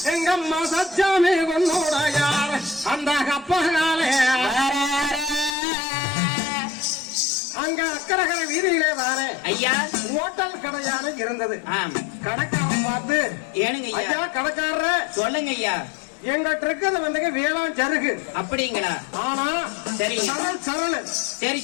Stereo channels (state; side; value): drops out; right; at 5.6 s